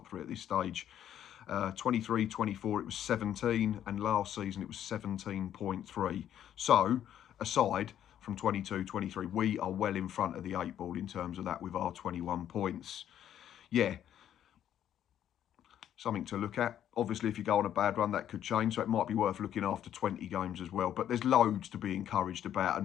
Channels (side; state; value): right; quieter; 10.6 dB